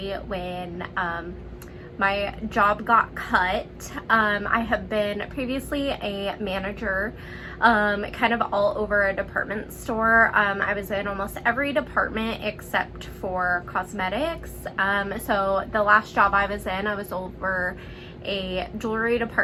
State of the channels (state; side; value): identical; both; correlation 1.00